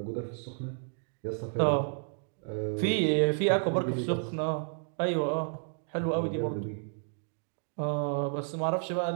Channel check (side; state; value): left; silent; digital silence